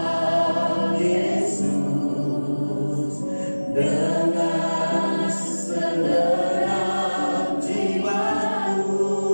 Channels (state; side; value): inverted; both; correlation -1.00